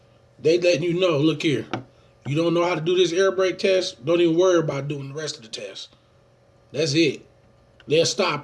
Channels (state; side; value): identical; both; correlation 1.00